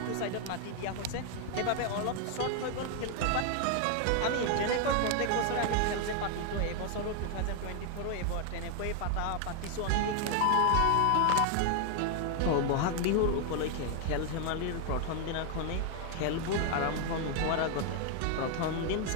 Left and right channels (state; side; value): different; both; correlation 0.00